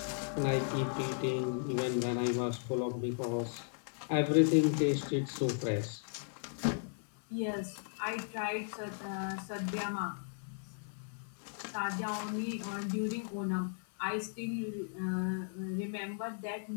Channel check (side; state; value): right; silent; 54 dB below the other